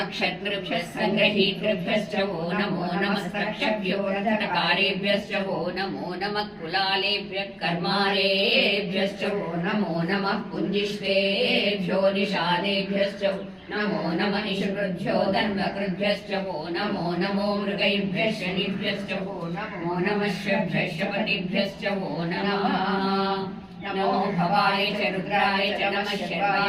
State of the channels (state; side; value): identical; both; correlation 1.00